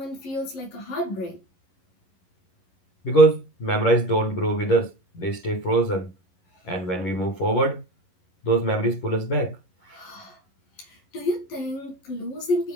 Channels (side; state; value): right; late; 11 ms